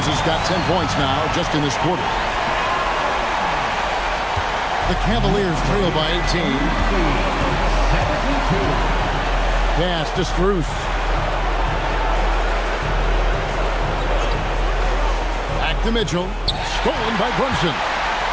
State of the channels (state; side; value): identical; both; correlation 1.00